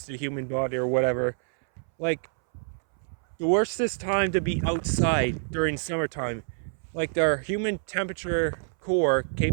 to the human body or whatever. Like, the worstest time to be outside during summertime, like their human temperature core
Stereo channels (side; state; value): left; silent; 60 dB below the other